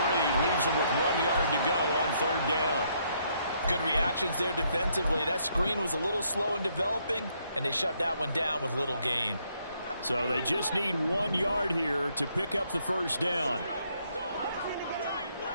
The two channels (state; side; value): inverted; both; correlation -0.72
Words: Leaves him with 1 yard to go on 3rd down. Good reactions there defensively. That screen was a little slow in developing, and they shut that one down with little gain. So they just need 1 yard here to pick up the 1st down.